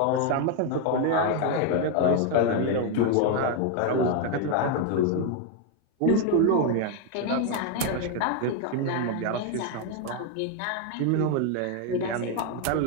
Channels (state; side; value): different; both; correlation 0.01